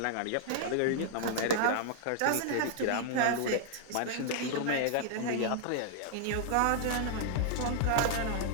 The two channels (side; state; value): both; different; correlation -0.01